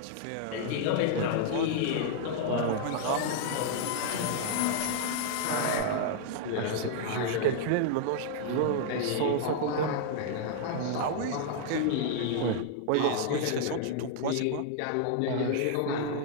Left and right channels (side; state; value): both; different; correlation -0.01